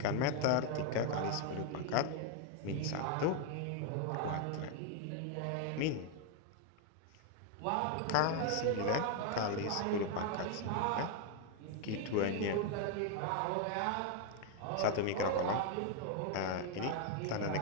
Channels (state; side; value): different; both; correlation 0.01